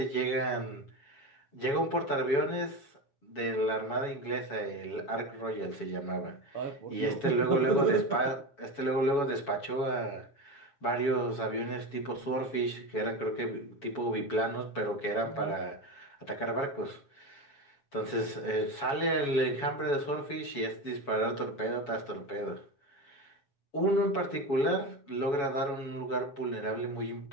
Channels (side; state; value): right; late; 7.1 ms